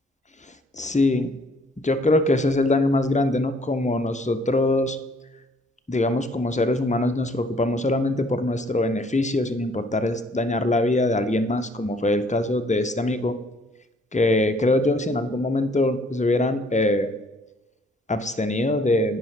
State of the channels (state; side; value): normal; both; correlation 0.61